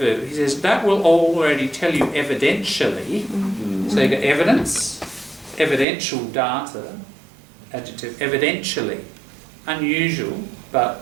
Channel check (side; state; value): left; drops out; at 5.9 s